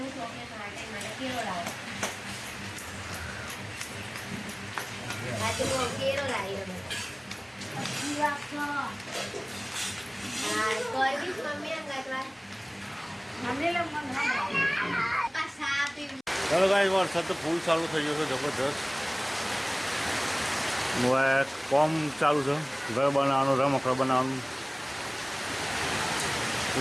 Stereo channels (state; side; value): identical; both; correlation 1.00